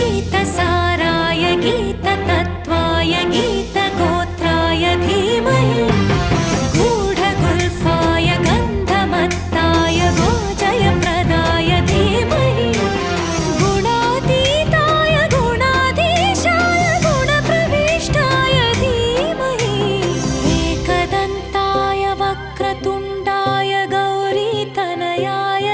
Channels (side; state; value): both; identical; correlation 1.00